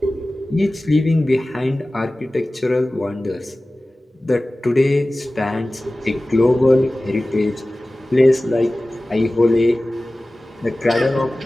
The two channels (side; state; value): both; normal; correlation 0.97